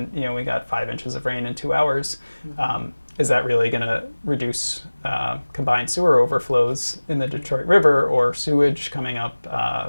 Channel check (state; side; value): inverted; both; correlation -1.00